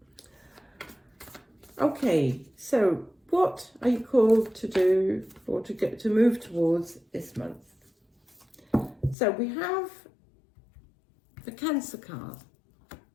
Okay, so what are you called to do, or to move towards this month? So we have the Cancer card,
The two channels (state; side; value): drops out; right; at 9.2 s